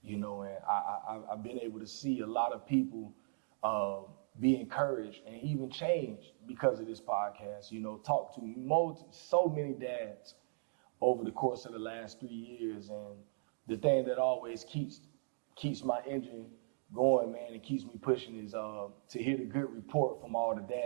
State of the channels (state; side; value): silent; left; digital silence